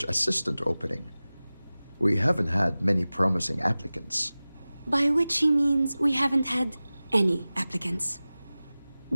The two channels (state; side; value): inverted; both; correlation -0.97